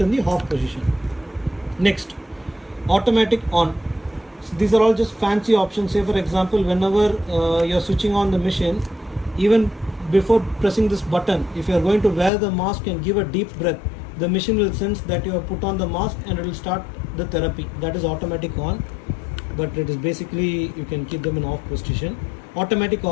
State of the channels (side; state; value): right; drops out; at 12.3 s